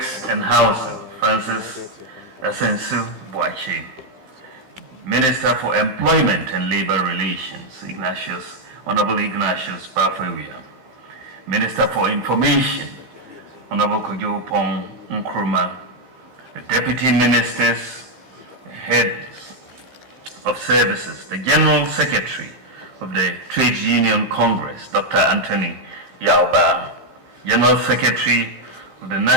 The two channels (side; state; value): left; late; 15 ms